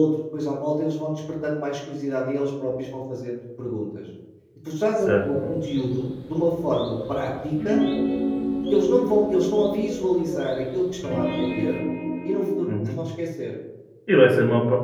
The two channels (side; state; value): both; identical; correlation 1.00